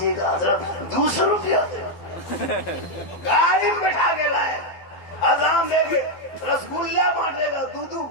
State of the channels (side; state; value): right; late; 12 ms